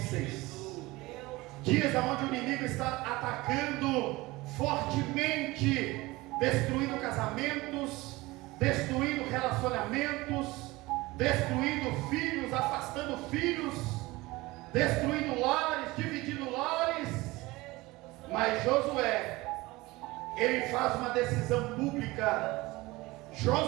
dias onde o inimigo está atacando fortemente, destruindo casamentos, destruindo relacionamentos, destruindo filhos, afastando filhos, destruindo lares, dividindo lares. Mas Josué, ele faz uma decisão pública.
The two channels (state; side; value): quieter; left; 20.9 dB